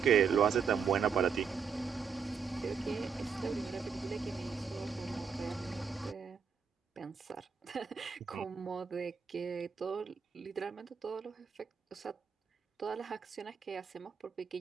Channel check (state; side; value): quieter; left; 6.3 dB